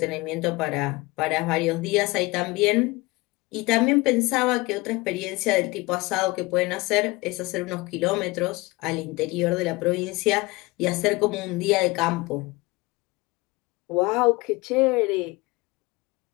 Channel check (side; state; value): right; quieter; 22.7 dB